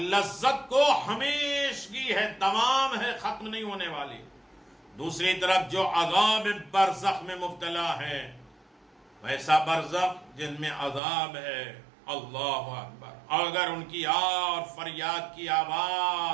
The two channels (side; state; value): left; drops out; at 11.0 s